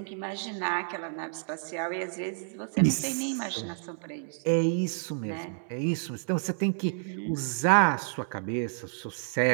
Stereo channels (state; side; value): silent; left; digital silence